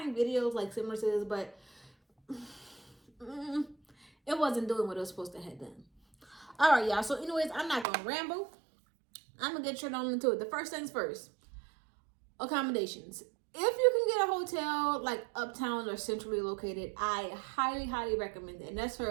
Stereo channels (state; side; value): drops out; left; at 7.9 s